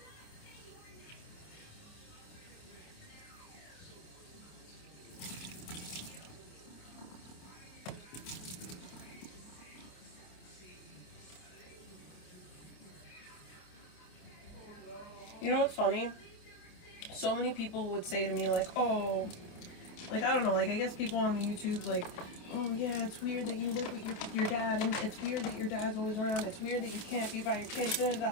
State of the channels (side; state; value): right; late; 28 ms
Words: You know what's funny? So many people would say to me, like, oh, like, I don't know, like, I guess people on the YouTube, like, oh, yeah, it's weird that you live with your dad, and it's weird that your dad's always around, it's weird that you can't be by your kids, da, da,